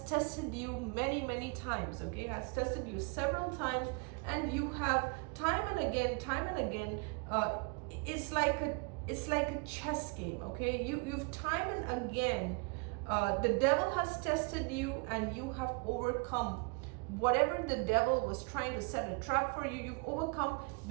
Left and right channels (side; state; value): left; quieter; 32.3 dB